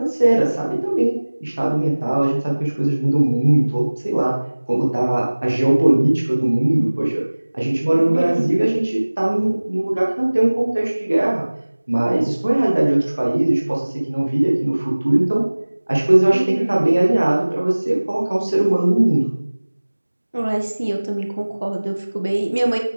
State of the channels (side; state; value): both; inverted; correlation -1.00